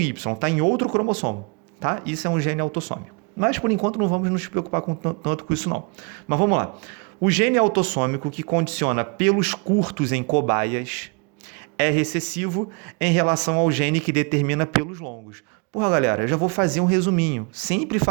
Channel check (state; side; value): quieter; left; 33.1 dB